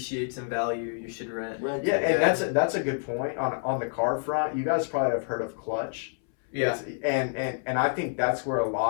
in value, you should rent. Yeah, and that's a good point on the car front. You guys probably have heard of clutch. Yeah. And I think that's where a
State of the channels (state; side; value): silent; right; 60 dB below the other